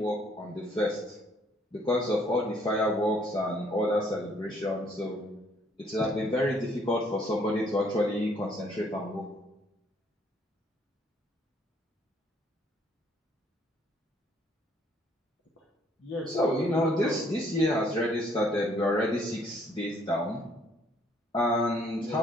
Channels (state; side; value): normal; both; correlation 0.65